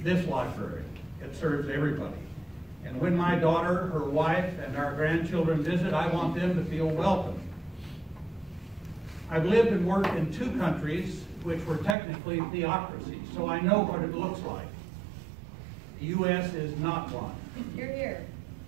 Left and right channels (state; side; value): drops out; left; at 12.0 s